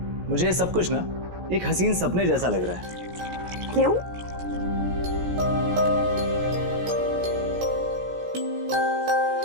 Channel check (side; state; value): left; late; 17 ms